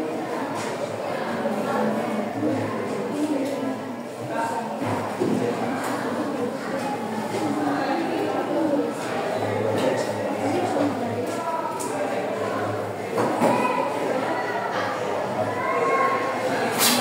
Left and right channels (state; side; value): identical; both; correlation 1.00